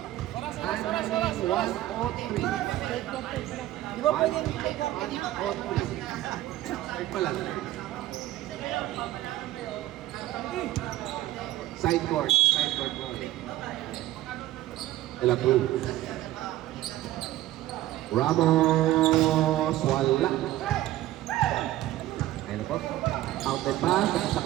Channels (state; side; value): quieter; left; 15.0 dB